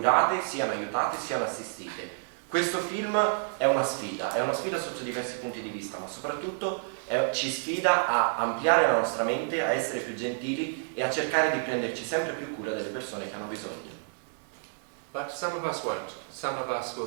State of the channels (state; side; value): silent; left; digital silence